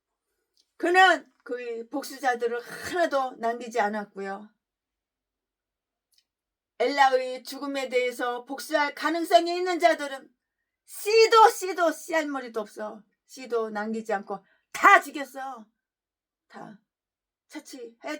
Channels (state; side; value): identical; both; correlation 1.00